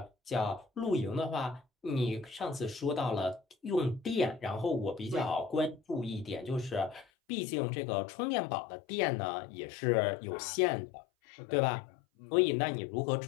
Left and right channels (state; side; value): drops out; right; at 7.1 s